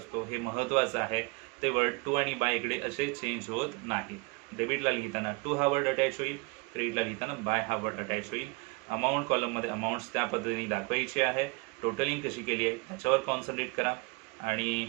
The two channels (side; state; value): left; quieter; 28.2 dB